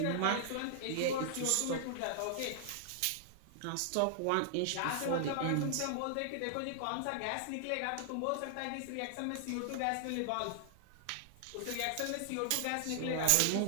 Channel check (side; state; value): both; different; correlation -0.01